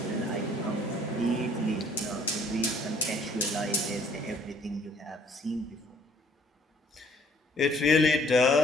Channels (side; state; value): both; normal; correlation 0.60